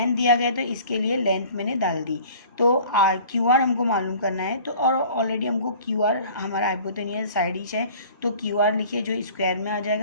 दिया गया तो इसके लिए लेंथ मैंने डाल दी, तो आर क्यू आर हमको मालूम करना है, तो और ऑलरेडी हमको क्यू आर हमारा हाइपोटेनियस साइड ही है, तो क्यू आर लिखिए जो स्क्वायर में आ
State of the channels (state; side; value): inverted; both; correlation -0.48